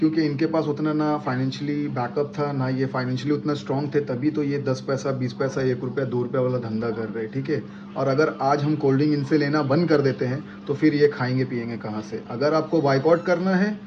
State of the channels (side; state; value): both; identical; correlation 1.00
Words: इनके पास उतना ना फाइनेंशियली बैकअप था, ना ये फाइनेंशियली उतना स्ट्रांग थे, तभी तो ये 10 पैसा 20 पैसा 1 रुपया 2 रुपया वाला धंधा कर रहे हैं, ठीक है। और अगर आज हम कोल्ड ड्रिंक इनसे लेना बंद कर देते हैं तो फिर ये खाएंगे पिएंगे कहाँ से? अगर आपको बाइकआउट करना है